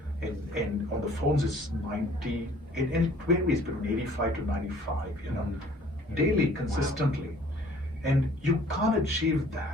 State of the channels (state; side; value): normal; both; correlation 0.54